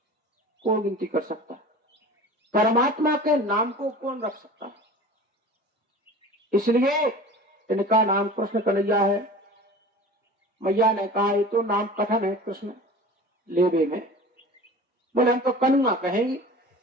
कौन गिनती कर सकता है? परमात्मा के नाम को कौन रख सकता है? इसलिए इनका नाम कृष्ण कन्हैया है। मैया ने कहा ये तो नाम कठिन है कृष्ण लेबे में। बोले हम तो कन्हुआ कहेंगे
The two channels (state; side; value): normal; both; correlation 0.38